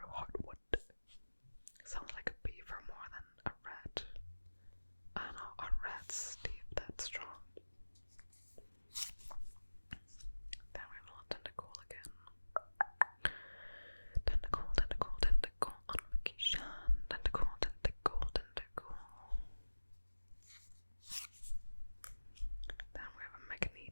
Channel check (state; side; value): inverted; both; correlation -1.00